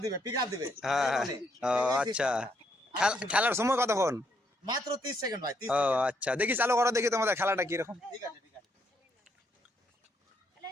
দিবে হ্যাঁ এই হ্যাঁ। বলে। ও এই আচ্ছা, system। খেলার সময় কতক্ষণ? মাত্র 30 সেকেন্ড ভাই, 30 ও সেকেন্ড। আচ্ছা, দেখি চালু করো, দেখি তোমাদের খেলাটা কিরকম। ঠিক আছে ঠিক আছে,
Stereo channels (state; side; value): normal; both; correlation 0.74